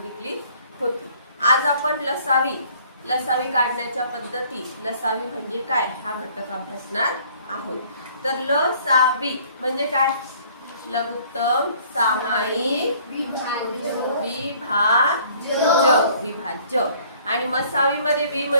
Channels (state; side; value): inverted; both; correlation -0.57